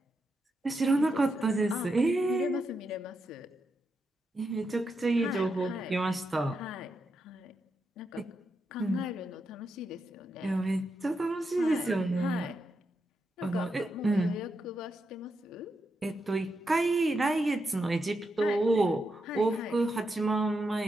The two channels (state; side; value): normal; both; correlation 0.85